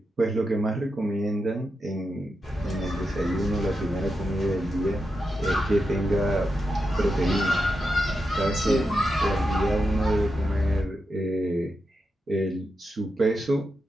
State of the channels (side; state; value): both; normal; correlation 0.87